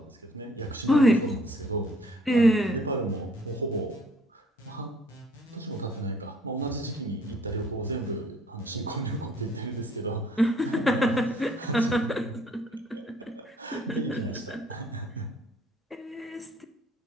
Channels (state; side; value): normal; both; correlation 0.60